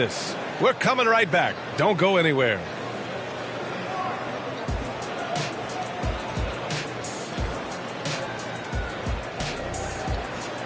We're coming right back. Don't go anywhere.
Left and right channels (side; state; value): both; identical; correlation 1.00